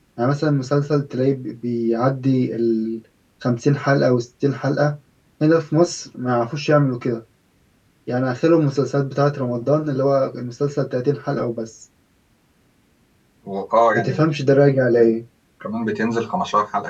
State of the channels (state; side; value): identical; both; correlation 1.00